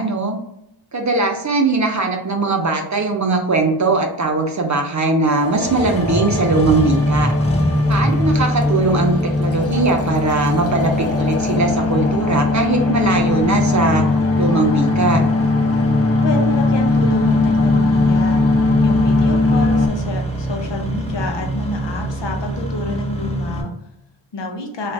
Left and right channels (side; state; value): both; normal; correlation 0.48